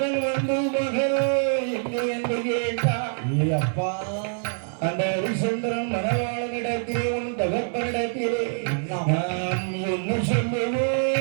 அந்த ஹரிச்சந்திரன் மனவாளனிடத்திலே உன் தகப்பனிடத்திலே நான் என்ன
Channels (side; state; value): left; silent; digital silence